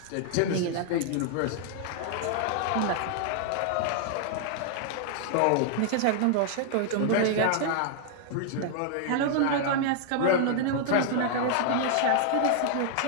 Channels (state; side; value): different; both; correlation 0.00